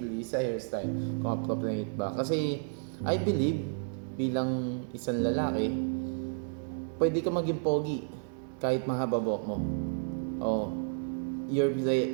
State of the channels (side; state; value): left; silent; digital silence